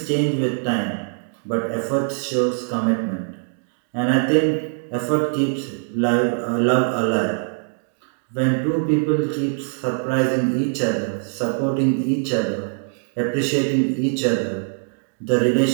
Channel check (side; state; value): left; silent; 59 dB below the other